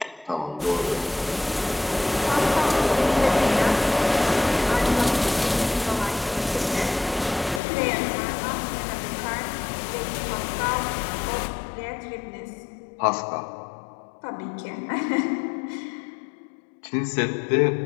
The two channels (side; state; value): right; drops out; at 7.6 s